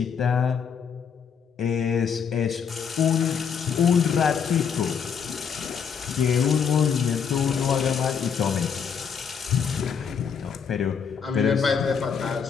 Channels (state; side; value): quieter; right; 6.8 dB